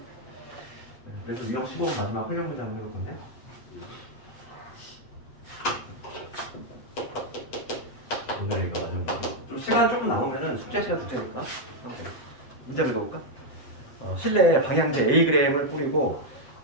그래서 유형 15 마지막 활용 문제 한번 해볼 건데. 오늘 이거 마지막 문제. 좀 시간 조금 나오면은 숙제 시간 줄 테니까. 문제 읽어볼까? 실내에 방향제 Ag을 뿌리고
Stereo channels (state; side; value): late; right; 7.8 ms